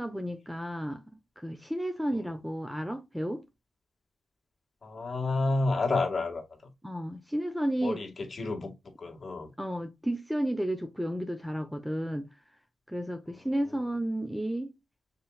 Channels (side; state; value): both; normal; correlation 0.94